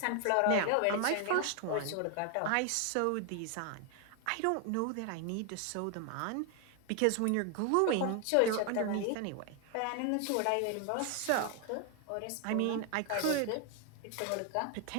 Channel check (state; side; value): different; both; correlation 0.00